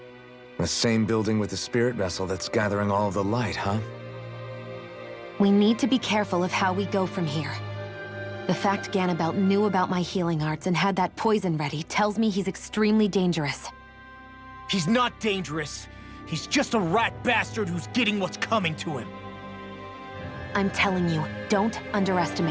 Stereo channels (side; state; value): both; identical; correlation 1.00